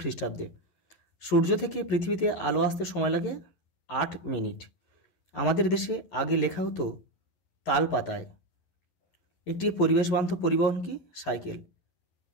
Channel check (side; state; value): right; late; 11 ms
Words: খ্রিস্টাব্দে। সূর্য থেকে পৃথিবীতে আলো আসতে সময় লাগে 8 মিনিট। আমাদের দেশে আগে লেখা হতো তাল পাতায়। একটি পরিবেশ বান্ধব পরিবহন কি? সাইকেল।